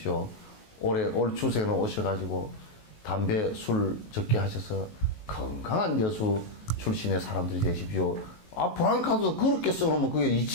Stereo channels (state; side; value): late; right; 19 ms